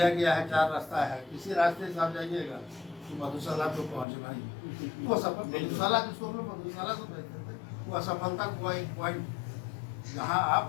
गया है 4 रास्ता है, किसी रास्ते से आप जाइएगा तो मधुशाला तो पहुँचना ही, वो सफल मधुशाला जिसको मधुशाला तो कहते हैं, वो असफलता का एक पॉइंट जहाँ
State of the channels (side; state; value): right; drops out; at 4.0 s